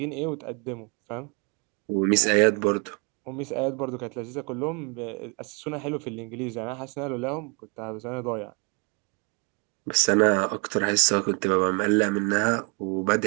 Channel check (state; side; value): quieter; left; 34.1 dB